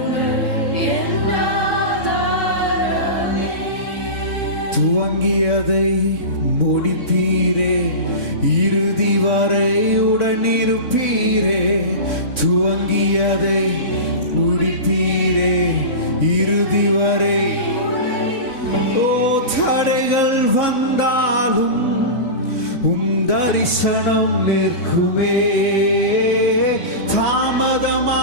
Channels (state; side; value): late; right; 3.6 ms